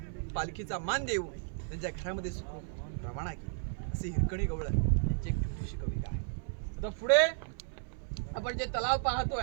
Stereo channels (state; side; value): silent; left; 55 dB below the other